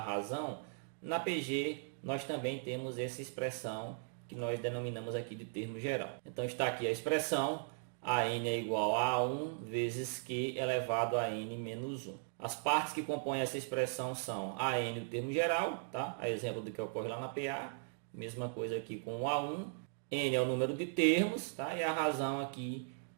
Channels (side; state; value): left; silent; digital silence